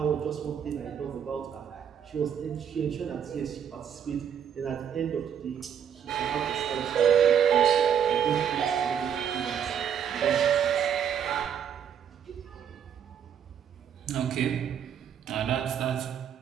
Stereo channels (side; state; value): left; quieter; 8.4 dB